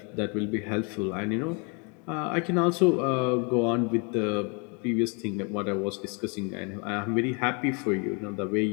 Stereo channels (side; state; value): right; quieter; 34.2 dB